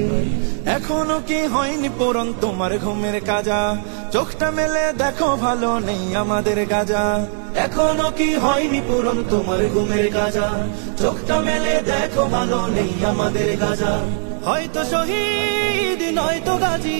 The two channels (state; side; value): silent; left; digital silence